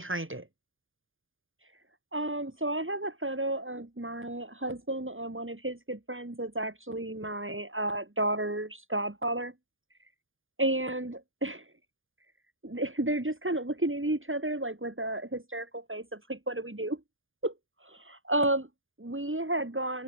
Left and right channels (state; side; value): late; left; 0.59 ms